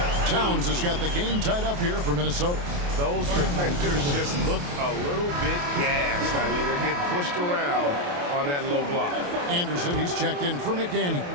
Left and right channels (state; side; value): late; left; 28 ms